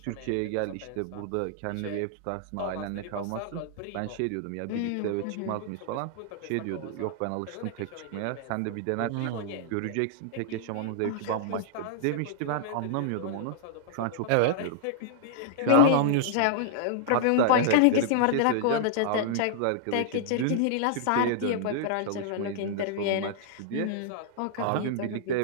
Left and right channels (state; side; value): different; both; correlation -0.01